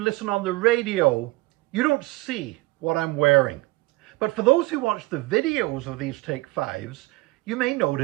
on the radio, you don't see what I'm wearing. But for those who watch the videos of these Take 5s, you may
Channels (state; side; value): quieter; left; 21.8 dB